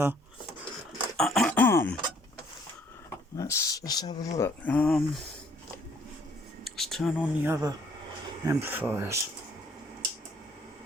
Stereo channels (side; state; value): both; normal; correlation 0.62